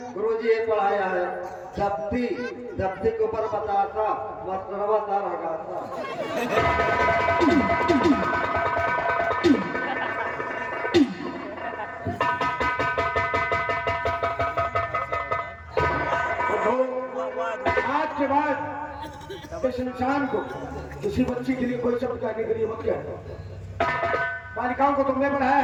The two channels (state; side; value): identical; both; correlation 1.00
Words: गुरुजी ये पढ़ाया है धपती धपती के ऊपर बताता मस्तरा बता रहा था। आज के बाद इस इंसान को किसी बच्ची के लिए कोई शब्द कहने के लिए मत कहना। बालिकाओं को तुमने पढ़ाया